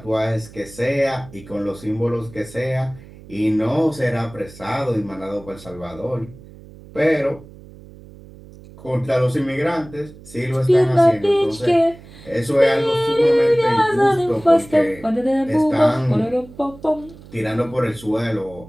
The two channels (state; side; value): noise; right; hum, 20 dB below the sound